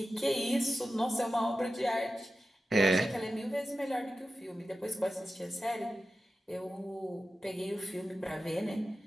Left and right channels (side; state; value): both; normal; correlation 0.93